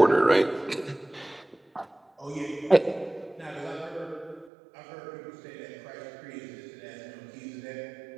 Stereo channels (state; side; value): drops out; left; at 4.5 s